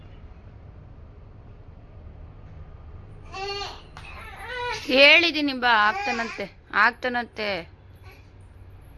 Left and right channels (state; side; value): identical; both; correlation 1.00